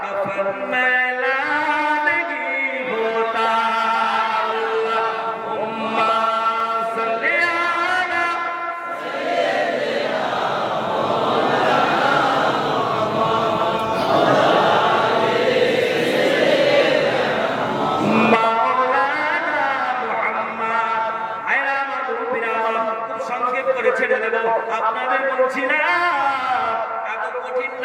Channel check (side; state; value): both; identical; correlation 1.00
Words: कफन मैला नहीं होता, अल्लाहुम्मा सल्ली अला মাওলানা মুহাম্মদ। আয়রা আমার মুরব্বিরা, খুব সংক্ষেপ করে ছেড়ে দেব, আপনাদের বলছি না। এত কঠিন